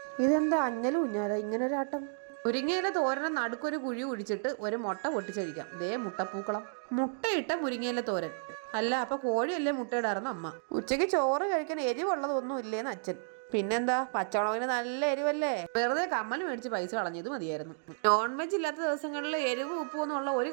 ഇതെന്താ അഞ്ഞലും ഉഞ്ഞാല ഇങ്ങനൊരാട്ടം? മുരിങ്ങയില തോരനെ നടുക്കൊരു കുഴി കുഴിച്ചിട്ട് ഒരു മുട്ട പൊട്ടിച്ചഴിക്കാം. ദേ മുട്ടപ്പൂക്കളം. മുട്ടയിട്ട മുരിങ്ങയില തോരൻ. അല്ല, അപ്പൊ കോഴിയല്ലേ മുട്ടയിടാറുന്ന അമ്മ. ഉച്ചയ്ക്ക് ചോറ് കഴിക്കാൻ എരിവുള്ളതൊന്നും ഇല്ലേന്ന് അച്ഛൻ. പിന്നെന്താ, പച്ചമുളകിന് നല്ല എരിവല്ലേ. വെറുതെ കമ്മൽ മേടിച്ച് പൈസ കളഞ്ഞത് മതിയായിരുന്നു. നോൺ വെജ് ഇല്ലാത്ത ദിവസങ്ങളിൽ എരിവ് ഉപ്പും എന്നുള്ള ഒരു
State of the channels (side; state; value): left; silent; digital silence